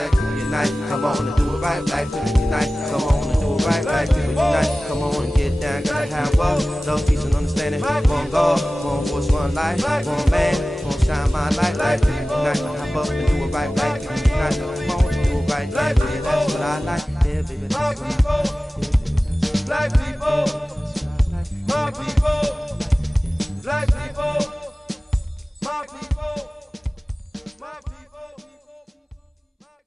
people unite. Come on and do it right. Black people unite. Come on and do it right. Black people unite. Come on and get down. Gotta have love, love, peace, and understanding. One God, one voice, one life. One man, one shine my light. Black people unite. Hop up and do it right. Black people unite. Come on and do it right. Yeah, baby, that's what I like. Yeah, baby, that's what I like. Black people, my people, black people, my people, my people.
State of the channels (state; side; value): normal; both; correlation 0.97